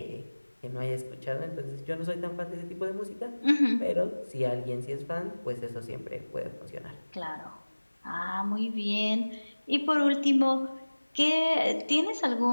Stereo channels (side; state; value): both; inverted; correlation -1.00